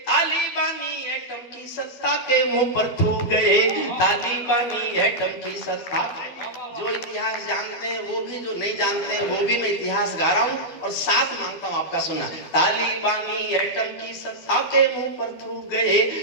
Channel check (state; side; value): late; right; 12 ms